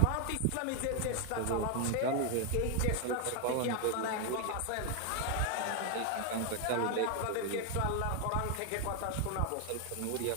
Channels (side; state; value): both; different; correlation 0.00